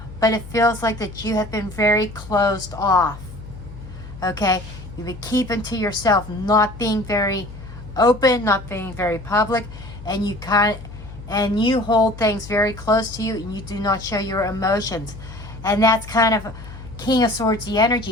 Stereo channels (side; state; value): left; noise; hum, 14 dB below the sound